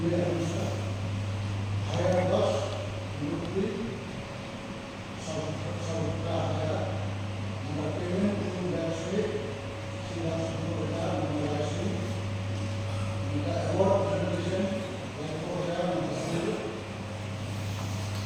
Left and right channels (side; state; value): both; identical; correlation 1.00